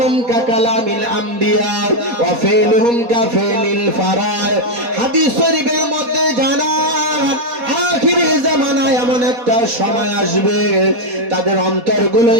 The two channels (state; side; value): late; left; 4.2 ms